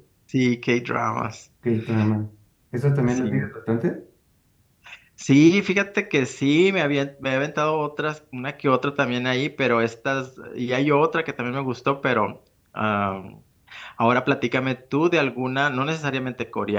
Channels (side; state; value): both; identical; correlation 1.00